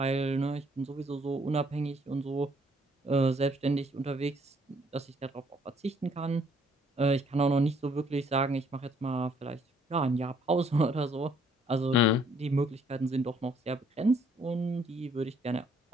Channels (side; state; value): both; normal; correlation 0.64